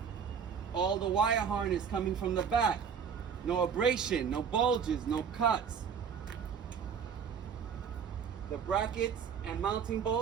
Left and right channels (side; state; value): left; quieter; 7.0 dB